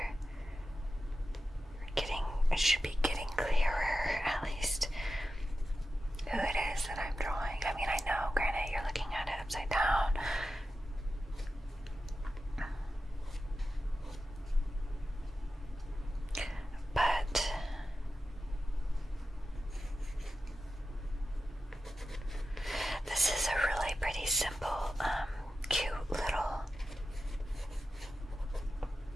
It should be getting clearer, at least, who it is that I'm drawing. I mean, I know, granted, you're looking at it upside down. But this is a really pretty simple, cute little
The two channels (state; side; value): normal; both; correlation 0.92